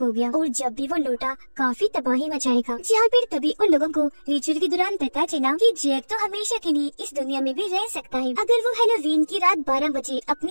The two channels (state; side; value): inverted; both; correlation -1.00